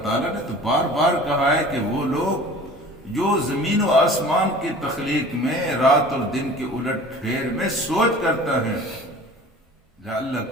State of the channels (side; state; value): both; normal; correlation 0.43